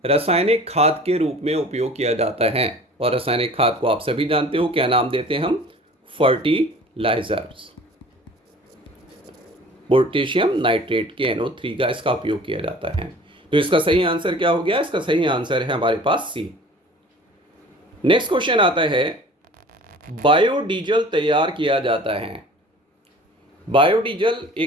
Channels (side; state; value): both; normal; correlation 0.45